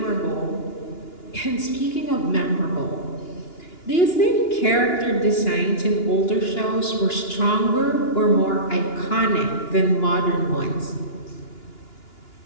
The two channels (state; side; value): late; right; 2.9 ms